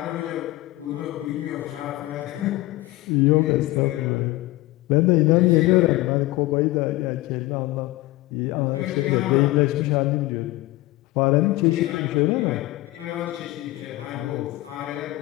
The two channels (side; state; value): right; quieter; 18.7 dB